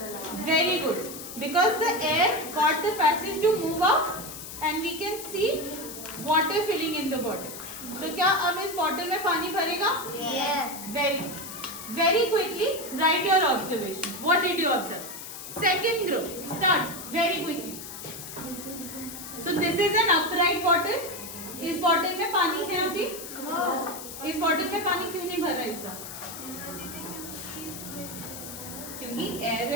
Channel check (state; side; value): noise; left; hiss, 11 dB below the sound